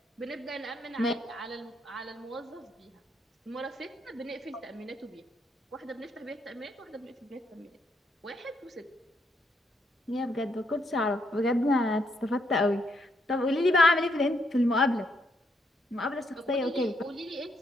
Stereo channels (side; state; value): both; normal; correlation 0.75